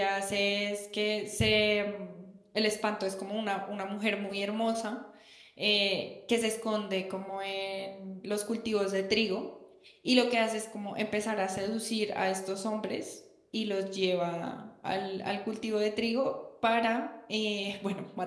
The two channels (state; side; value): identical; both; correlation 1.00